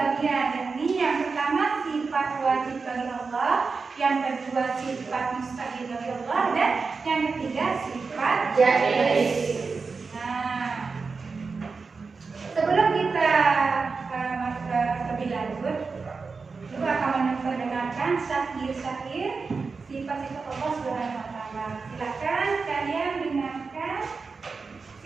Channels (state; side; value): quieter; left; 4.6 dB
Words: pembagian, yakni yang pertama sifat wajib bagi Allah, yang kedua sifat mustahil bagi Allah, dan yang ketiga sifat Jaiz. Nah, sebelum kita lebih lanjut, Ibu akan mendengarkan syair-syair sifat-sifat Allah Subhanahu wa Ta'ala. Silakan kalian dengarkan